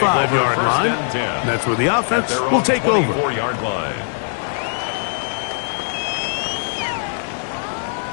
line. That's where the offense will take over. 24-yard line.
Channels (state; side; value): silent; right; digital silence